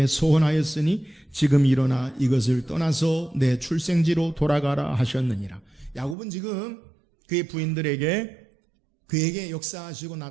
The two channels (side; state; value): left; drops out; at 6.2 s